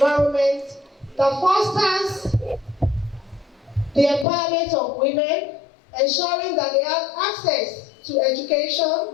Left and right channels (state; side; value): drops out; right; at 4.2 s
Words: that fosters the empowerment of women, ensuring that they have access to